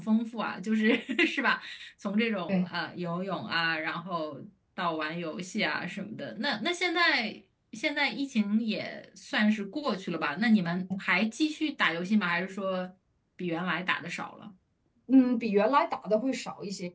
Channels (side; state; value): both; identical; correlation 1.00